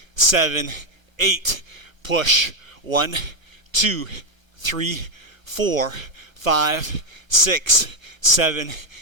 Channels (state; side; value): late; left; 1.2 ms